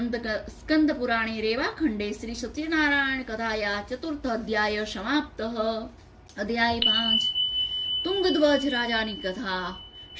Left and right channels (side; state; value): both; identical; correlation 1.00